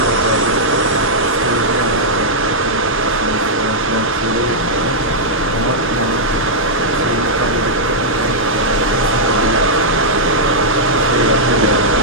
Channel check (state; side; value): normal; both; correlation -0.07